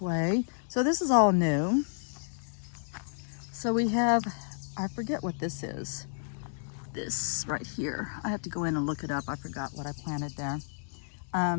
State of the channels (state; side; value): silent; right; digital silence